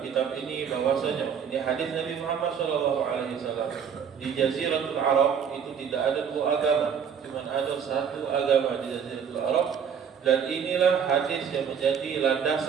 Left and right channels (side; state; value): left; quieter; 7.4 dB